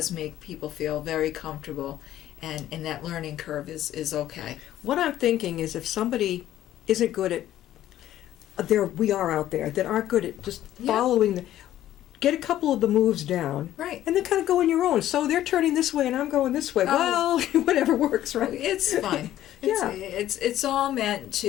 make people feel very comfortable, and that learning curve is okay. What I'm thinking is if somebody isn't good at, we are out there that aren't good at just following get a couple of the moves down. Right. And then kind of go on your own. So they're turning this way and I'm going this way. Well, whatever works, right? It's fun. Yeah. It's all meant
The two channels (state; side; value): quieter; right; 12.9 dB